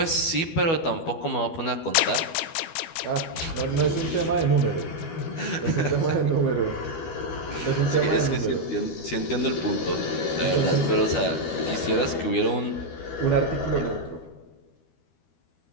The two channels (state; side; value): late; right; 12 ms